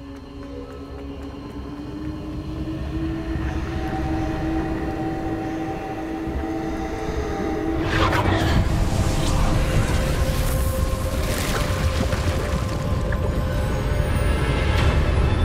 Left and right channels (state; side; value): identical; both; correlation 1.00